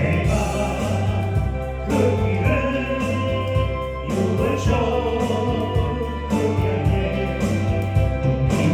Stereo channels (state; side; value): identical; both; correlation 1.00